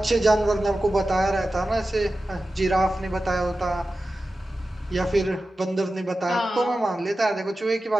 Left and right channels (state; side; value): normal; both; correlation 0.94